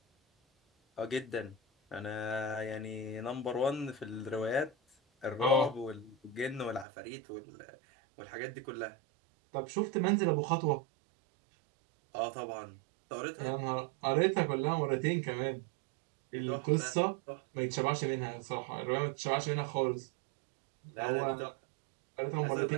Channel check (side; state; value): left; drops out; at 6.9 s